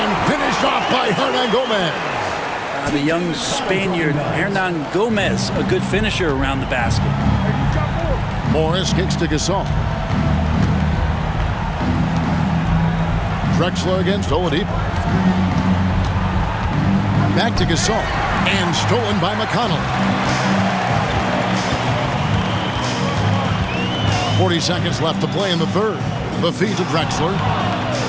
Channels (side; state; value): both; identical; correlation 1.00